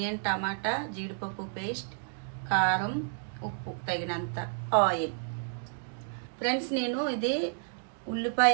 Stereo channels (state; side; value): silent; left; digital silence